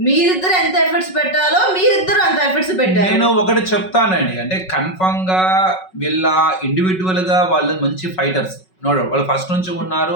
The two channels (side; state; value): right; late; 5.4 ms